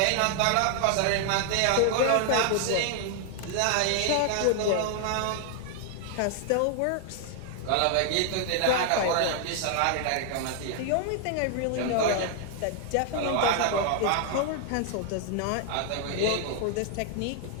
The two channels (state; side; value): different; both; correlation 0.00